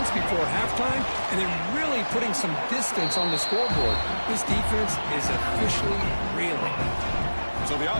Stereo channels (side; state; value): both; inverted; correlation -1.00